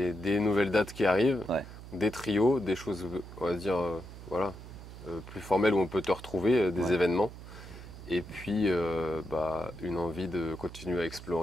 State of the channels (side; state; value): right; noise; hum, 14 dB below the sound